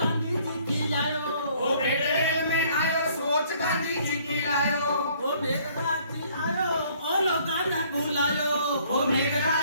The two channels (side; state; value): both; inverted; correlation -0.60